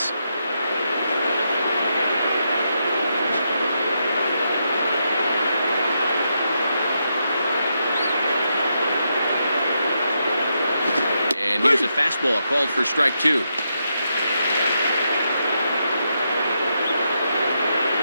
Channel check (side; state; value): both; inverted; correlation -0.82